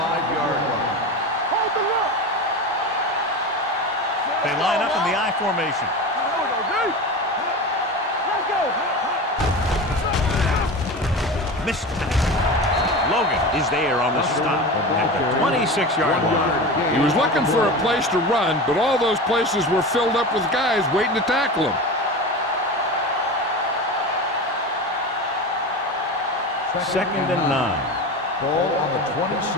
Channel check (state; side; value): normal; both; correlation 0.28